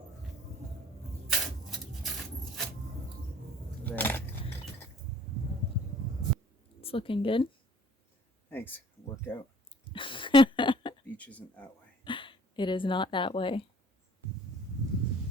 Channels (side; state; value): both; normal; correlation 0.53